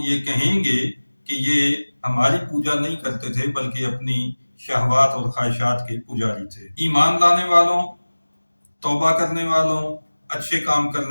یہ کہیں گے کہ یہ ہماری پوجا نہیں کرتے تھے بلکہ اپنی شہوات اور خواہشات کے پجاری تھے۔ ایمان لانے والوں، توبہ کرنے والوں، اچھے کام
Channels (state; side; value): inverted; both; correlation -1.00